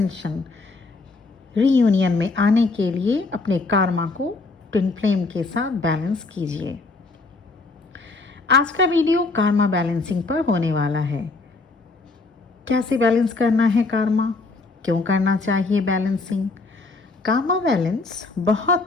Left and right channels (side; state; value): right; quieter; 3.6 dB